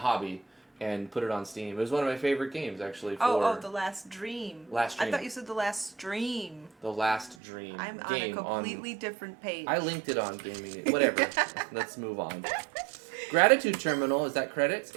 And put it on Steam. It was one of my favorite games, actually. The Last Dream. Last Dream. I thought you said The Last Stream. The Last Dream. I'm game on a completely different page. I linked it on Gaming. Whatever. Let's move on. Gratitude Terminal. Is that credits?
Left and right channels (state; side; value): drops out; left; at 7.4 s